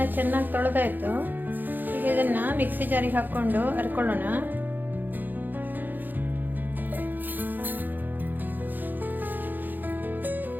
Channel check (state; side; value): late; left; 0.088 ms